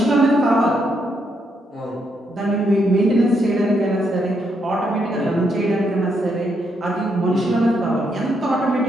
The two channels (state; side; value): normal; both; correlation 0.77